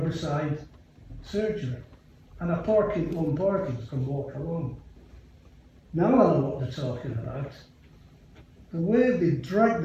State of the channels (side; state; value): both; identical; correlation 1.00